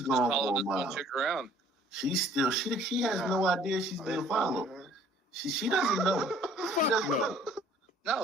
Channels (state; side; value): normal; both; correlation 0.56